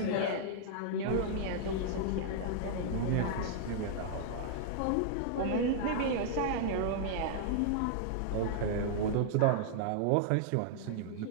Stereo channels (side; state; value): both; different; correlation -0.01